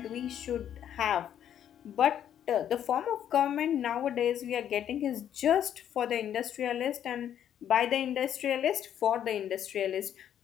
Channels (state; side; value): quieter; right; 10.0 dB